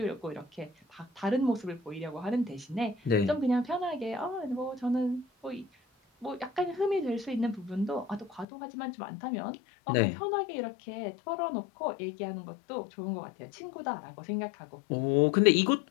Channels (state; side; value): drops out; right; at 8.5 s